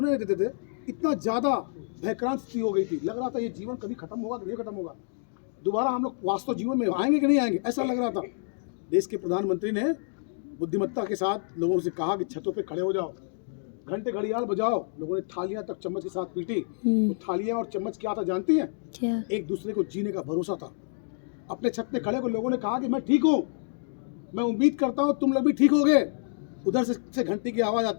नहीं देते थे। इतना ज़्यादा भयक्रांत स्थिति हो गई थी, लग रहा था ये जीवन कभी खत्म होगा कि नहीं खत्म होगा, दोबारा हम लोग वास्तव जीवन में आएंगे कि नहीं आएंगे, ऐसा लग रहा था। देश के प्रधानमंत्री ने बुद्धिमत्ता के साथ लोगों से कहा कि छतों पे खड़े हो जाओ, घंटे घड़ियाल बजाओ। लोगों ने थालियां तक चम्मच के साथ पीटी। तो थालियां और चम्मच क्या था जानती हैं? क्या? एक दूसरे को जीने का भरोसा था। अपने छत पे खड़े हो लोगों ने कहा कि मैं ठीक हूँ, मैं उम्मीद करता हूँ तुम लोग भी ठीक होगे। उधर से घंटी की आवाज़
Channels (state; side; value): silent; right; digital silence